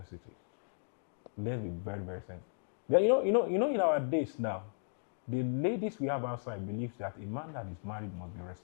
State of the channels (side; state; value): right; silent; digital silence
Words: Let's be very, very sensitive. Yeah, in our days now, the ladies we have outside believes that a man that is married must be